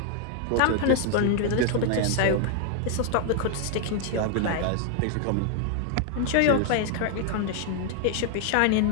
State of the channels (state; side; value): different; both; correlation 0.00